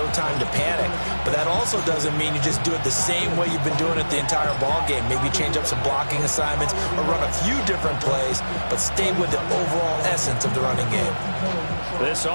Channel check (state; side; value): inverted; both; correlation -1.00